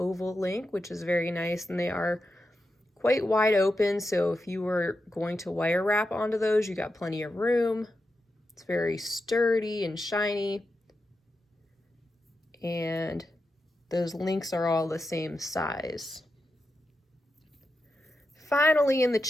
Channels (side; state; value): both; normal; correlation 0.88